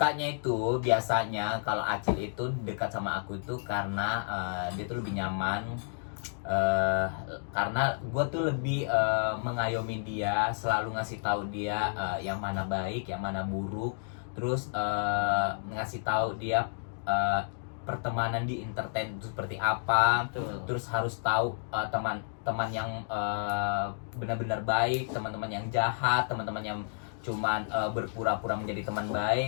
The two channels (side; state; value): right; silent; digital silence